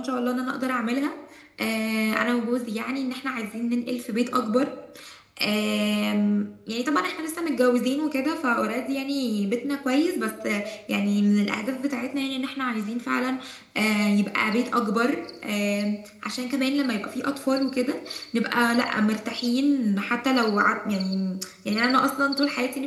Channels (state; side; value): identical; both; correlation 1.00